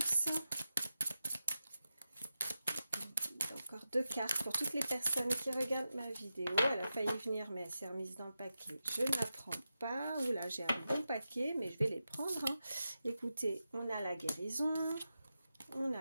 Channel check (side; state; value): both; inverted; correlation -0.91